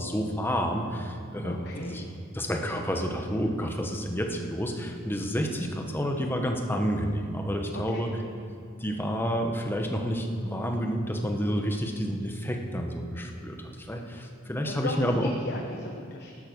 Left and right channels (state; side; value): normal; both; correlation 0.74